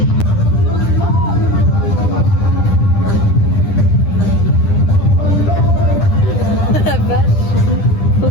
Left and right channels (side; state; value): right; late; 10 ms